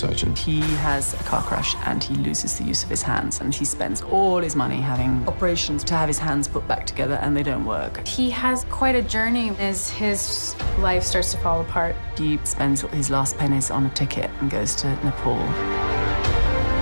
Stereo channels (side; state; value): both; inverted; correlation -1.00